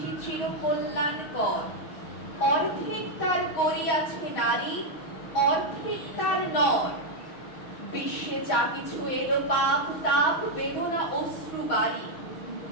চির কল্যাণকর, অর্ধেক তার করিয়াছে নারী, অর্ধেক তার নর। বিশ্বে যা কিছু এলো পাপ তাপ বেদনা অশ্রু বাড়ি,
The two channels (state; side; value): late; right; 6.3 ms